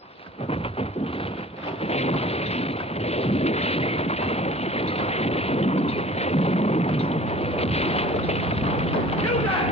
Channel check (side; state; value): both; normal; correlation 0.47